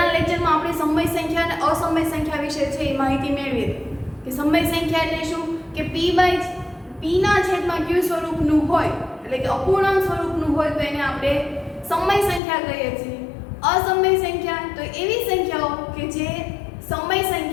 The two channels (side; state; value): right; drops out; at 12.4 s